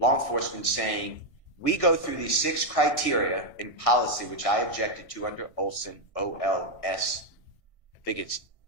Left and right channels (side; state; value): right; late; 1.6 ms